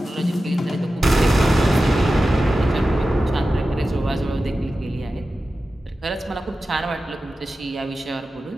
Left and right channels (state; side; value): normal; both; correlation 0.93